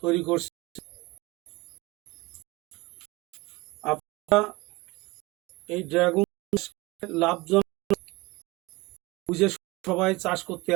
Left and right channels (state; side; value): quieter; left; 22.4 dB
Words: তৈরি করছে। আপনারা এই ড্রাগন লাভজনক বুঝে সবাই চাষ করতে